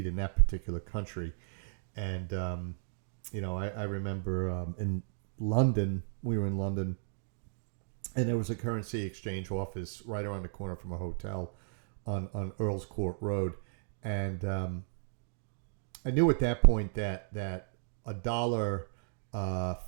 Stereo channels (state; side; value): silent; left; digital silence